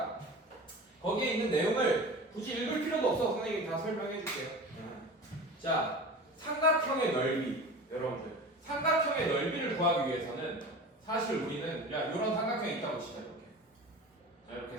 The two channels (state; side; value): normal; both; correlation 0.34